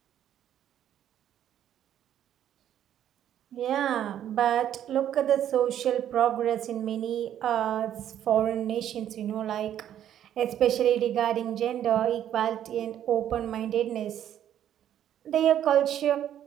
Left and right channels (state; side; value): quieter; left; 10.7 dB